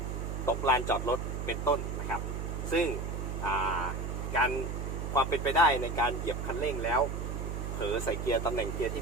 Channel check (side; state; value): right; noise; hum, 4 dB below the sound